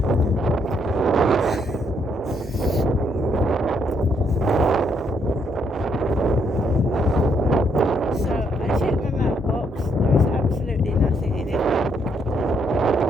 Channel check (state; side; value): normal; both; correlation 0.72